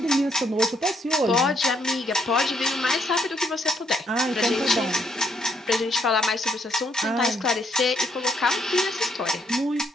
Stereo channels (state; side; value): normal; both; correlation 0.71